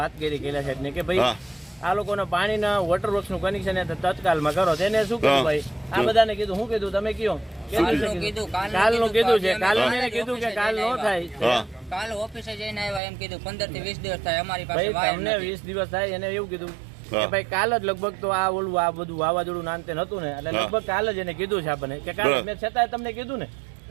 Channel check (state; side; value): drops out; left; at 13.0 s